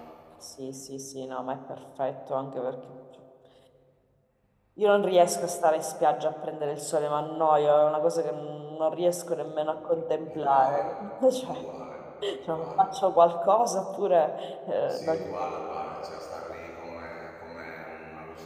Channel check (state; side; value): identical; both; correlation 1.00